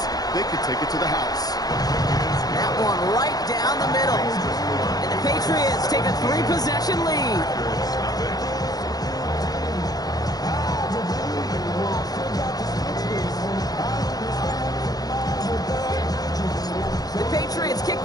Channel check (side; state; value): right; late; 0.19 ms